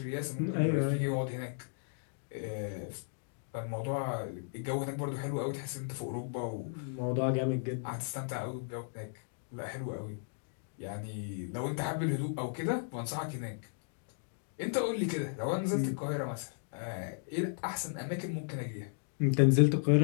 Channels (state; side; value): silent; right; digital silence